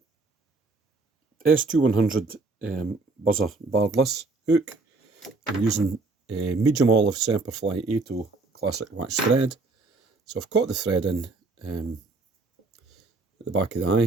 S2100 buzzer bardless hook. I'm using medium olive Semperfli 8 classic wax thread. So I've caught the thread in at the back of the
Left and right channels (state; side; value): quieter; left; 3.6 dB